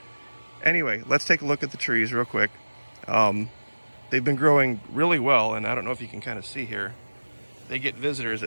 anyway, let's take a look at the trees real quick. They've been growing really well, and I don't know if you can kind of see here. They get visitors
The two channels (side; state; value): both; inverted; correlation -1.00